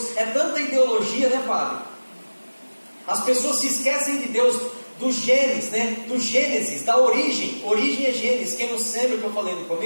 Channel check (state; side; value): inverted; both; correlation -1.00